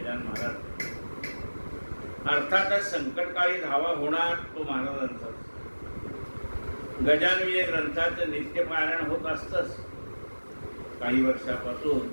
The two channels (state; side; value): inverted; both; correlation -1.00